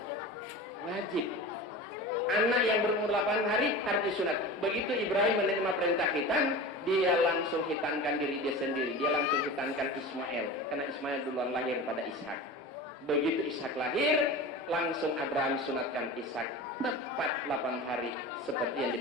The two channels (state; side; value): normal; both; correlation 0.32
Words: Wajib. Anak yang berumur 8 hari harus disunat. Begitu Ibrahim menerima perintah khitan, dia langsung khitankan diri dia sendiri. Dia langsung khitankan Ismail. Karena Ismail duluan lahir pada Ishak. Begitu Ishak lahir, langsung Abraham sunatkan Ishak. Tepat 8 hari seperti yang